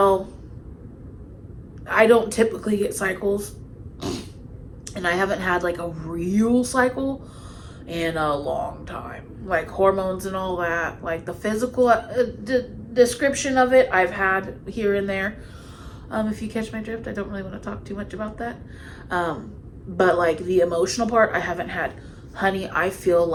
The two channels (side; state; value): both; identical; correlation 1.00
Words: I don't typically get cycles, and I haven't had like a real cycle in a long time. Like hormones and all that, like the physical description of it, I've had here and there. If you catch my drift, I don't really want to talk too much about that. But like the emotional part, I haven't had. Honey, I feel